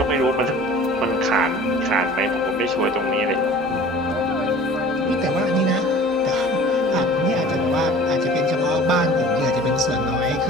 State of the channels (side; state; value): both; normal; correlation 0.45